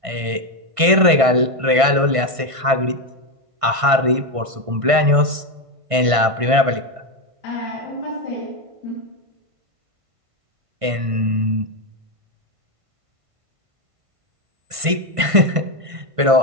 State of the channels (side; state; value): left; late; 1.5 ms